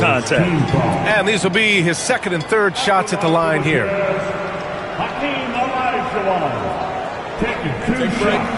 And these will be his second and third shots at the line here. Taking two Take a break.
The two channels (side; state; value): both; identical; correlation 1.00